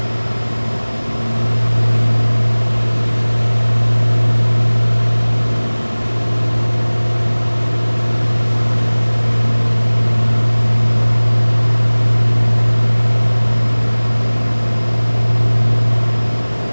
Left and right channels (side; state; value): both; inverted; correlation -1.00